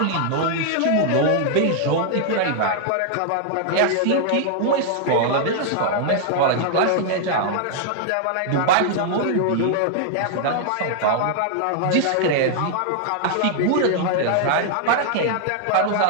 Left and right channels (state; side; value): different; both; correlation -0.01